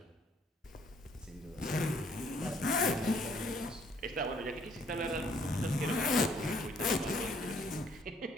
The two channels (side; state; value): both; normal; correlation 0.64